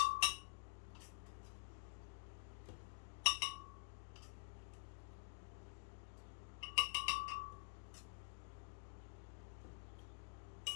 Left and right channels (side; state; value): right; silent; digital silence